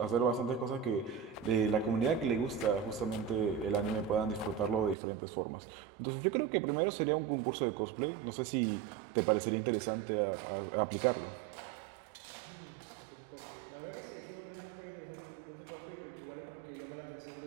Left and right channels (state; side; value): drops out; left; at 5.0 s